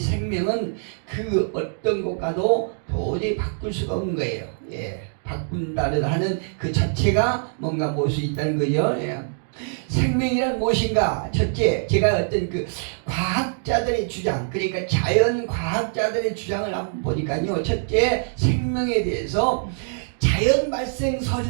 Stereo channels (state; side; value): silent; left; digital silence